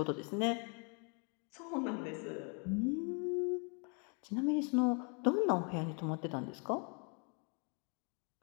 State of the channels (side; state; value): right; quieter; 36.7 dB